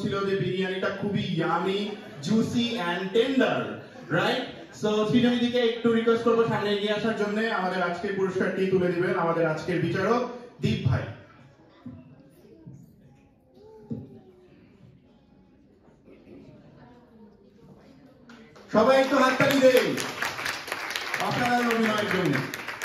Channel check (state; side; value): identical; both; correlation 1.00